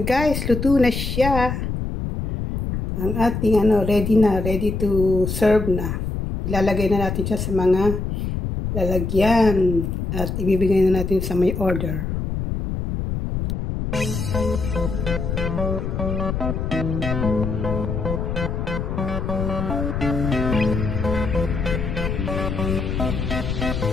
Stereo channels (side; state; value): left; noise; rumble, 3 dB below the sound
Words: luto na siya. Ang ating ready to serve na. Ilalagay na natin siya sa mga lalagyan at ibibigay na natin sa may order.